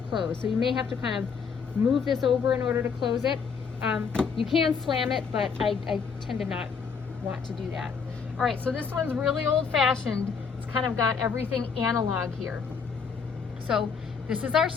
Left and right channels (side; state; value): right; quieter; 5.9 dB